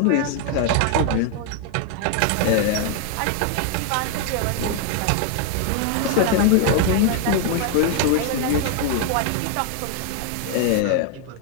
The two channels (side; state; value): both; different; correlation 0.00